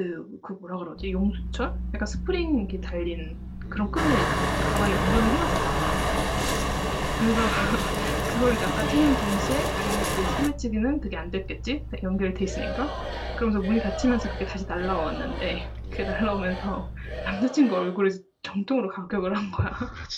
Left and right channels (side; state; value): both; identical; correlation 1.00